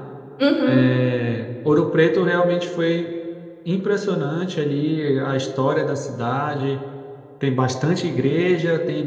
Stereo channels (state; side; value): identical; both; correlation 1.00